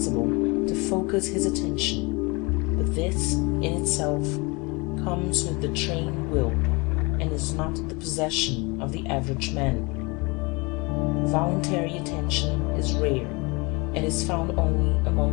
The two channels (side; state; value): right; quieter; 27.4 dB